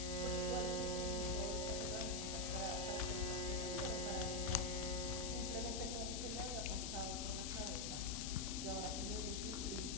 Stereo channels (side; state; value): left; noise; hiss, 3 dB below the sound